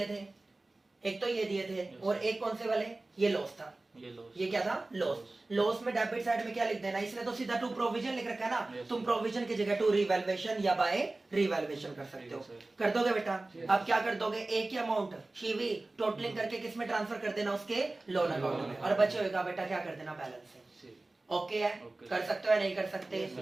थे, एक तो ये दिए थे, Yes. और एक कौन से वाले? ये लॉस था। ये लॉस। ये क्या था? लॉस। लॉस में डेबिट साइड में क्या लिख देना? इसने तो सीधा टू प्रोविजन लिख रखा है ना, Yes, तुम sir. प्रोविजन की जगह टू रिवैल्यूएशन या बाय रिवैल्यूएशन कर सकते हो। ठीक है, sir. कर दोगे बेटा? अब क्या कर दोगे? एक ही अमाउंट शिवी टोटलिंग करके किस में ट्रांसफर कर देना? उसके लोन अकाउंट में, और बचे होगा बेटा क्या कर देना? बैलेंस से। ओके है? Okay. कर सकते हो या नहीं कर सकते? Yes,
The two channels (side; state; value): left; quieter; 3.0 dB